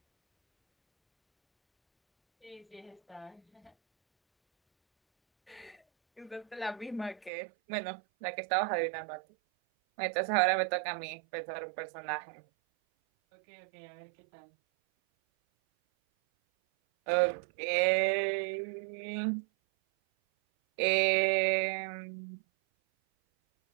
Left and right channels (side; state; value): left; drops out; at 7.3 s